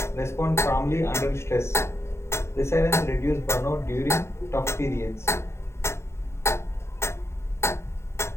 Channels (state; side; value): late; right; 0.13 ms